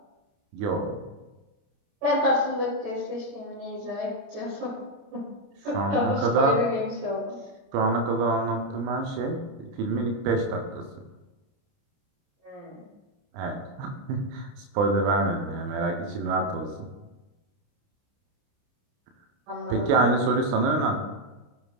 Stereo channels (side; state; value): left; late; 29 ms